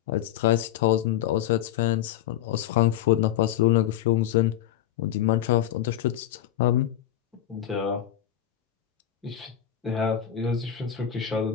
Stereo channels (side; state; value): right; quieter; 11.3 dB